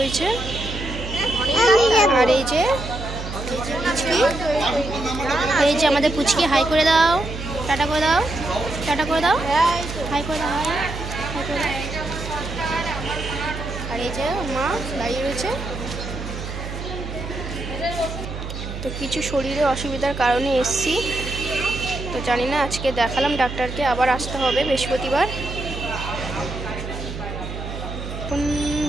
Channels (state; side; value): noise; right; hum, 7 dB below the sound